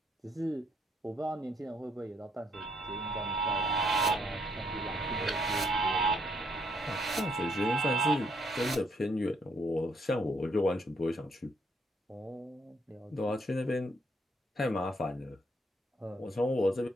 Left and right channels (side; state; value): both; normal; correlation 0.70